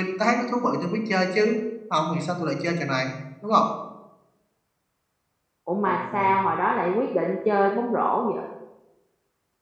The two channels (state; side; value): identical; both; correlation 1.00